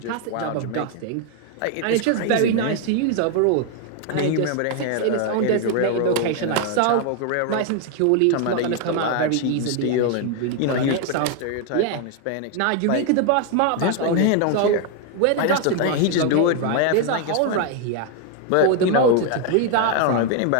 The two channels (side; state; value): both; different; correlation 0.01